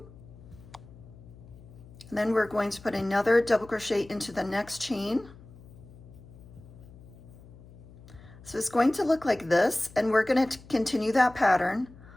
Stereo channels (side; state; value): left; noise; hum, 20 dB below the sound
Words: And then we're going to put another double crochet into the next chain. So it's going to look like this, and we're going to continue that pattern